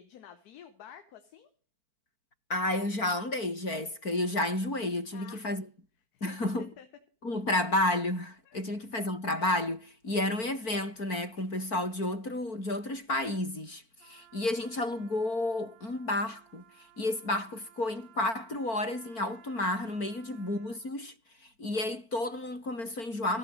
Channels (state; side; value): late; right; 4.5 ms